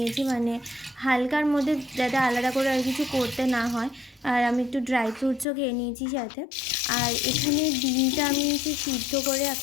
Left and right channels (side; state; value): right; drops out; at 5.5 s